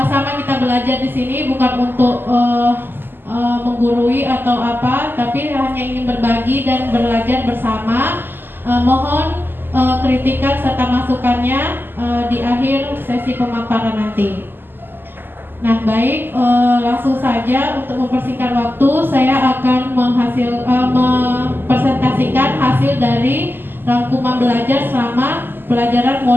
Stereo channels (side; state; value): left; late; 0.095 ms